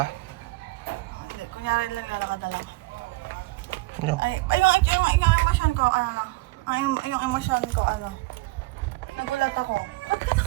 Oh, hindi, kunyari lang lalakad na lang. Yo. Ay, yung emosyon ko, yung emosyon ko, nagulat ako. Ba't ka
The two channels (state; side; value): quieter; left; 21.9 dB